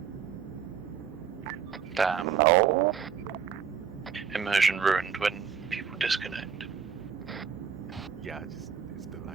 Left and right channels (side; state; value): left; quieter; 7.1 dB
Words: Damn. No. Immersion ruined when people disconnect. Yeah, it's the